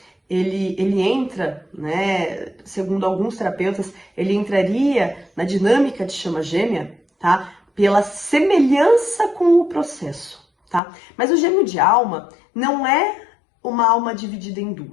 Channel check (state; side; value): drops out; right; at 10.8 s